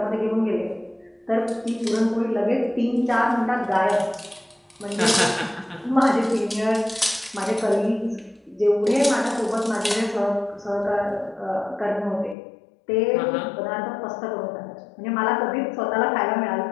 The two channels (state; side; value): drops out; right; at 12.4 s